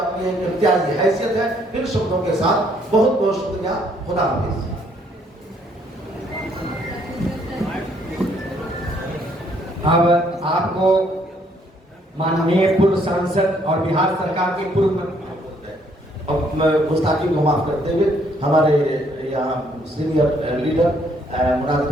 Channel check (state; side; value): normal; both; correlation 0.67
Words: एक इम्तियाजी हैसियत है। इन शब्दों के साथ बहुत बहुत शुक्रिया। खुदा हाफिज। अब आपको माननीय पूर्व सांसद और बिहार सरकार के पूर्व मंत्री, अब गुस्ताखी को माफ करते हुए हमारे यहाँ सीनियर लीडर मुनाजिर